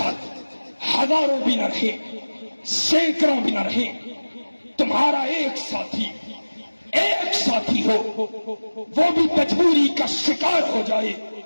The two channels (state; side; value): inverted; both; correlation -1.00